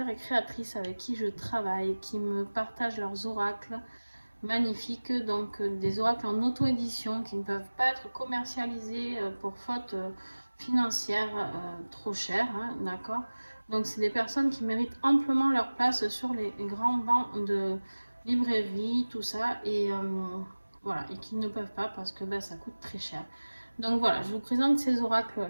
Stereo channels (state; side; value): inverted; both; correlation -1.00